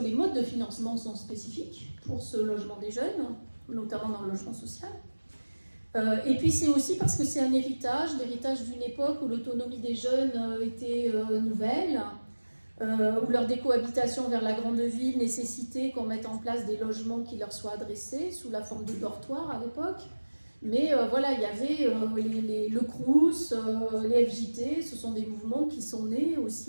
modes de financement sont spécifiques pour ce logement des jeunes, notamment dans le logement social. Et puis c'est aussi parce que c'est un héritage, l'héritage d'une époque où l'autonomie des jeunes était nouvelle, où leur décohabitation vers la grande ville nécessitait qu'on mette en place des logements qui leur soient adressés sous la forme de dortoirs à l'époque. Mais voilà, il y avait le Crous, les FJT, ce sont des mouvements qui sont nés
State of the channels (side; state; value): both; inverted; correlation -1.00